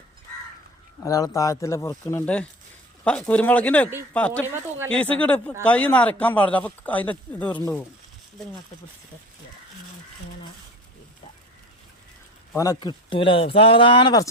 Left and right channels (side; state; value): both; normal; correlation 0.33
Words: ഒരാൾ താഴത്തില് പൊറുക്കുന്നുണ്ട്. കുരുമുളകിന്റെ പറ്റ കീസ് കിട് കൈ നരക്കാൻ പാടില്ല, അപ്പൊ അതിന്റെ ഇത് ഉരുണ്ടു പോകും. അവനെ കിട്ടൂല, സാധാരണ